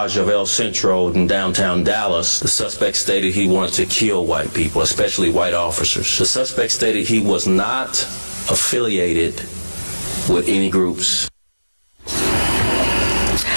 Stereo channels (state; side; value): inverted; both; correlation -1.00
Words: of El Centro in downtown Dallas. The suspect stated he wanted to kill white people, especially white officers. The suspect stated he was not affiliated with any groups.